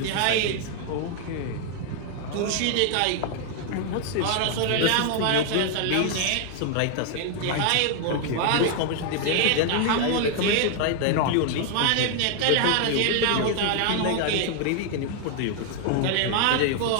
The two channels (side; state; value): both; different; correlation 0.00